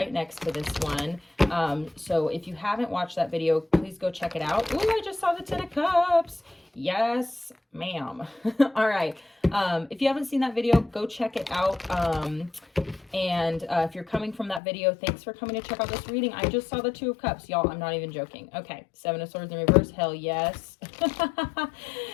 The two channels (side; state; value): right; drops out; at 14.6 s